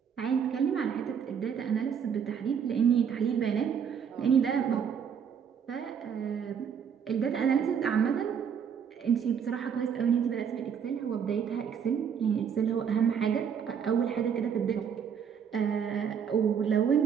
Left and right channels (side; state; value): left; quieter; 7.5 dB